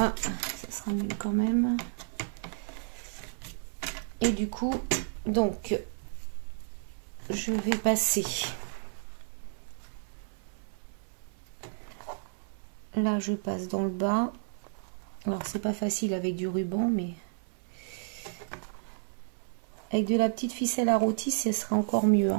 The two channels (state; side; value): silent; left; 57 dB below the other